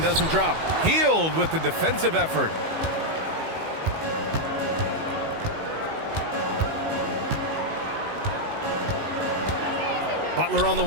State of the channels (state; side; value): late; left; 19 ms